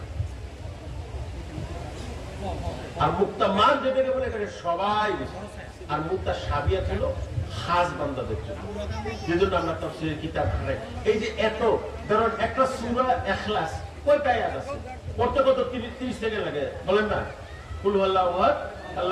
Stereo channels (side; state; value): both; identical; correlation 1.00